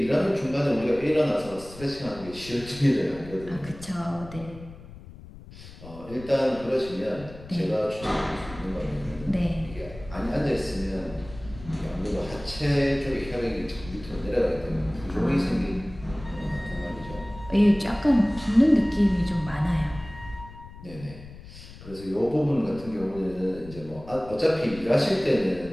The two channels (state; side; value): noise; left; rumble, 16 dB below the sound